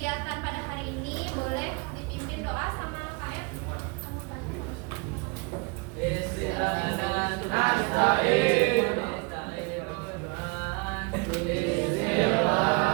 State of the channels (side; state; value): left; quieter; 30.5 dB